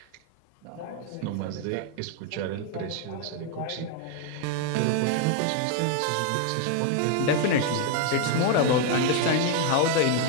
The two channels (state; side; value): different; both; correlation 0.00